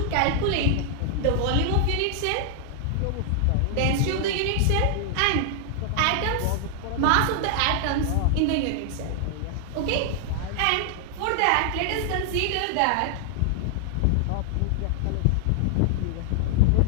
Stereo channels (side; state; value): both; different; correlation 0.00